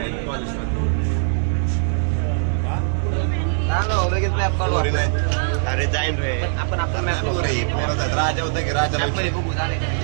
लगेच मॅप काढू पोरी आपण. नाही. अरे जाईन रे आपण मॅप पोरी, पोरं आहेत. राजा होता की राजा मध्ये बघू झाले.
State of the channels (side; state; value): left; silent; 65 dB below the other